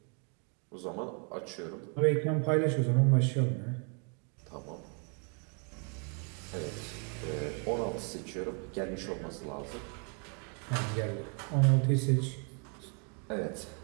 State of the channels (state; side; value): quieter; left; 38.8 dB